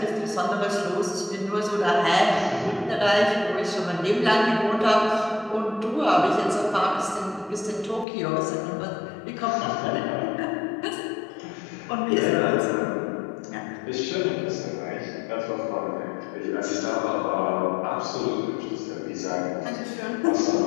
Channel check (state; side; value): drops out; right; at 8.1 s